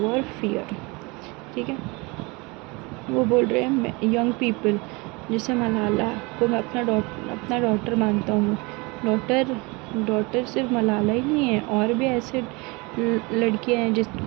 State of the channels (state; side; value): quieter; left; 26.7 dB